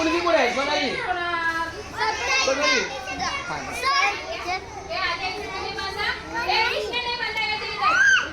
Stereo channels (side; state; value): both; identical; correlation 1.00